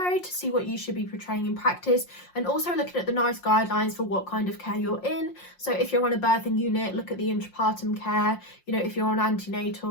to see what you should be portraying in practice, and also looking at the nice guidelines for what kind of care you're in. So if you're on a birthing unit, look at the intrapartum care. You know, if you're on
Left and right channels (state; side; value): late; right; 5.6 ms